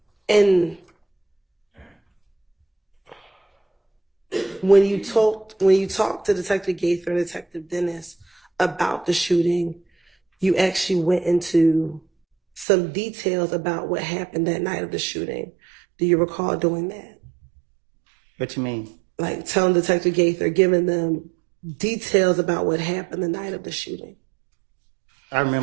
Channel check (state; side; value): drops out; left; at 12.7 s